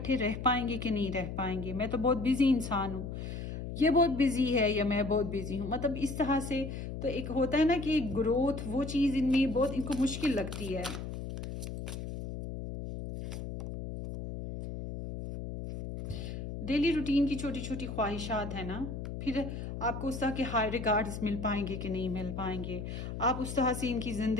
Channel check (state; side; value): noise; left; hum, 6 dB below the sound